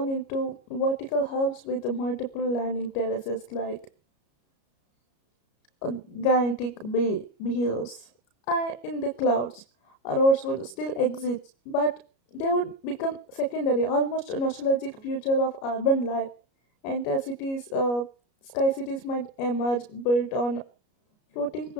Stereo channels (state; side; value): late; right; 33 ms